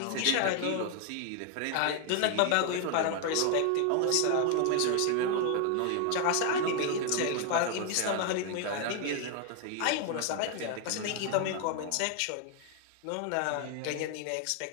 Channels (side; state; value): both; different; correlation 0.00